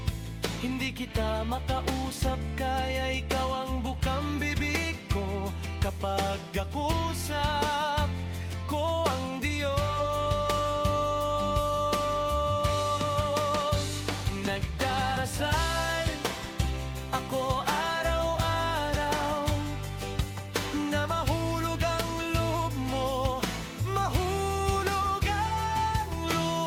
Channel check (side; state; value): both; identical; correlation 1.00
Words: kita makausap, kaya ikaw ang bukang bibig ko kapag ako ko ang Diyos. Ako araw-araw na mahulog ang loob mo, mahulog ang